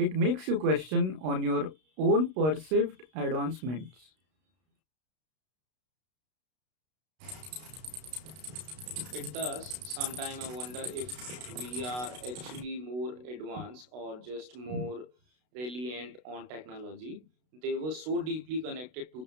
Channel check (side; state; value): left; late; 32 ms